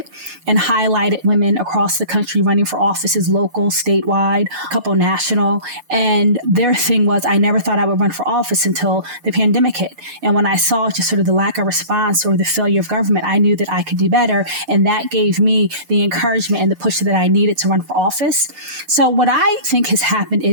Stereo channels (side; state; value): left; late; 6.7 ms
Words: and highlighted women across the country running for offices, local, statewide, a couple national. And their thing was, I never thought I would run for office until the pandemic hit. And when I saw just sort of the lack of response or the failure of government, I knew that I could do better. And that gave me the encouragement and the push that I needed to run for office. So what I think has happened